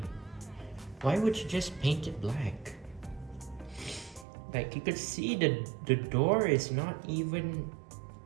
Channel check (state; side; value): drops out; left; at 4.2 s